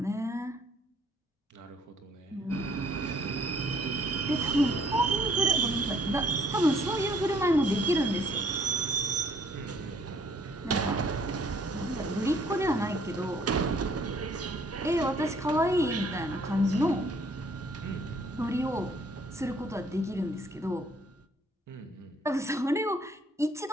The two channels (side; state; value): both; normal; correlation 0.62